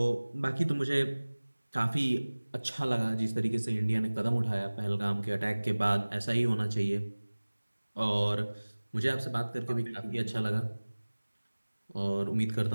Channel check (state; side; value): inverted; both; correlation -1.00